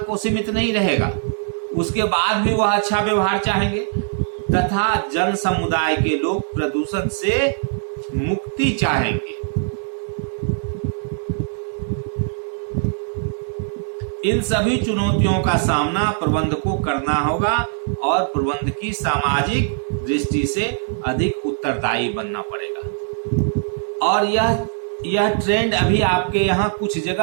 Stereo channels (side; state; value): left; silent; digital silence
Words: सीमित नहीं रहेगा, उसके बाद भी वह अच्छा व्यवहार चाहेंगे। तथा जन समुदाय के लोग प्रदूषण से मुक्ति चाहेंगे। इन सभी चुनौतियों का सामना प्रबंध को करना होगा और प्रबंध की सामाजिक दृष्टि से अधिक उत्तरदायी बनना पड़ेगा। और यह ट्रेंड अभी आपके यहाँ कुछ